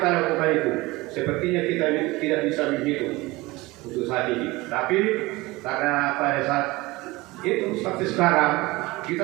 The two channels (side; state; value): left; quieter; 21.3 dB